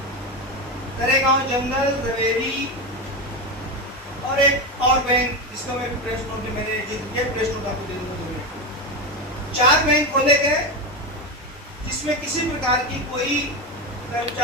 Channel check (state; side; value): normal; both; correlation 0.15